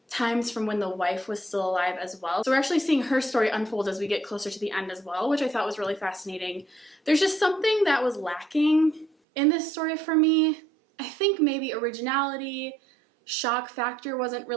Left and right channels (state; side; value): drops out; left; at 9.1 s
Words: times from when the wife was still alive as well. So we're actually seeing her story unfold as we get closer to the end as well, which I thought was really fascinating. There's just something that was lacking in this story for me. I think maybe originality, shock factor wasn't